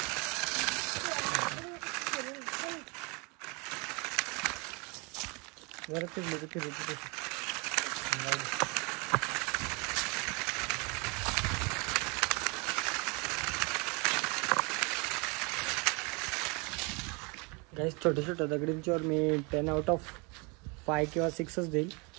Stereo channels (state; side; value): quieter; left; 30.2 dB